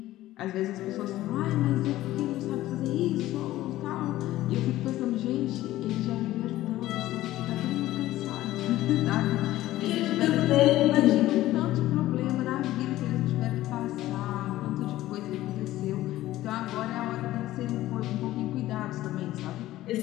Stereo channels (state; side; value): quieter; right; 15.4 dB